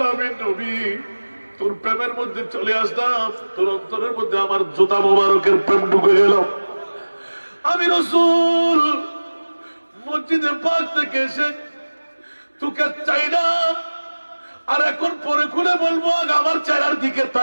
নবী তোর প্রেমের মধ্যে চলে আসলাম তোর অন্তরের মধ্যে আমার জুতা মোবারকের প্রেম ঢুকে গেল আমি রাসূল মসজিদে পাক থেকে এসে তোকে চাই না আর এখন পরে খুলে বলবো আমার চেহারার দিকে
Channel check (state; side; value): inverted; both; correlation -1.00